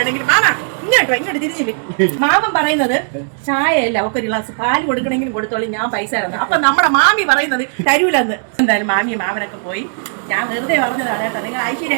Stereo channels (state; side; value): silent; left; 65 dB below the other